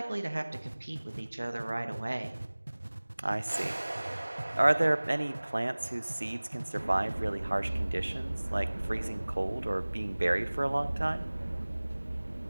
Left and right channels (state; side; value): inverted; both; correlation -1.00